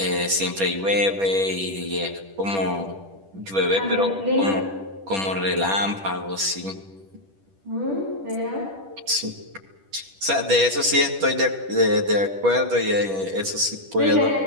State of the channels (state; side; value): late; left; 10 ms